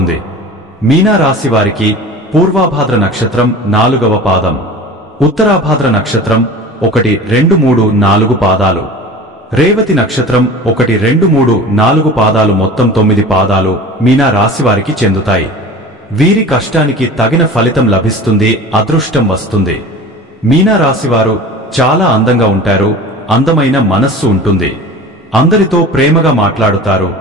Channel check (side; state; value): both; normal; correlation 0.38